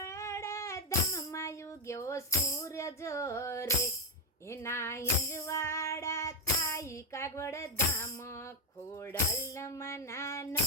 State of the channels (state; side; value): normal; both; correlation 0.04